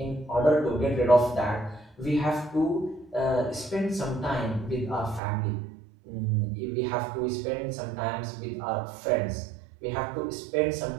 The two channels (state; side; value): drops out; left; at 5.2 s